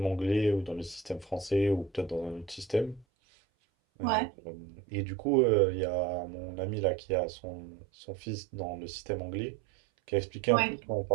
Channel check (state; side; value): drops out; left; at 3.1 s